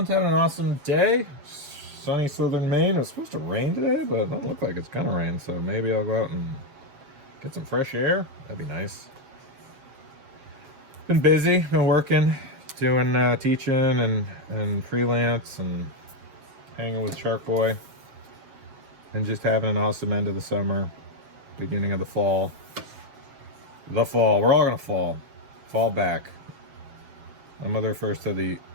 having an awesome day. Sunny southern Maine. It was supposed to rain today, but it doesn't look like it's gonna rain. So maybe I'll go out and get some fresh air. That'd be nice. Been busy, been working, doing teaching and freelance and hanging with Shark Boy. And just having an awesome end of the summer, beginning of the fall. The fall. We're all gonna fall. Fall back. My mother refers to the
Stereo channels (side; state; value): left; late; 7.3 ms